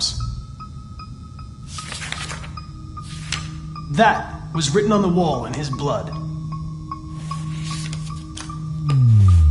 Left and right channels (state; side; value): identical; both; correlation 1.00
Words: That was written on the wall in his blood.